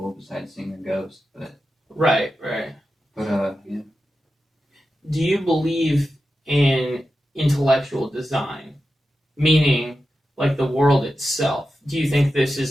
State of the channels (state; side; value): normal; both; correlation 0.91